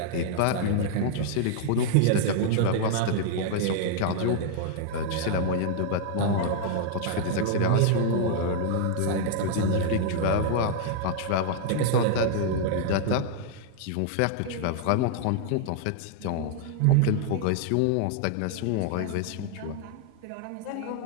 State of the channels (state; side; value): different; both; correlation -0.01